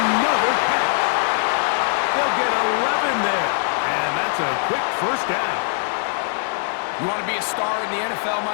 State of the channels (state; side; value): silent; right; digital silence